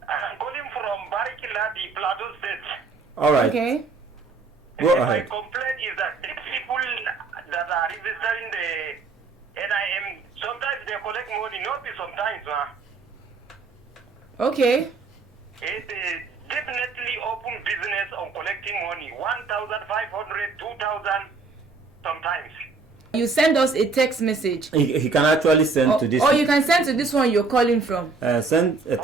I'm calling from Barikila, the Plateau State. All right. Okay. Go ahead. My complaint is that these people that are registering the NIN, sometimes they collect money, not sometimes. Okay. It's definitely open business on collecting money, 1,500, 2,000 sometimes. You send us a text message. He can actually send to this. Or you can send to this one you're calling from. Send a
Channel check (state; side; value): quieter; left; 4.2 dB